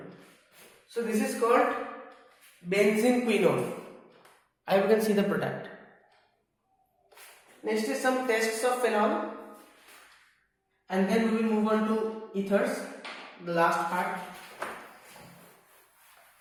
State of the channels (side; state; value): both; identical; correlation 1.00